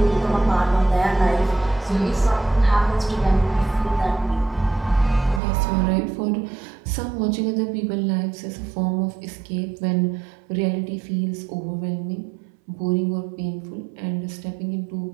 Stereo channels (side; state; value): left; drops out; at 5.4 s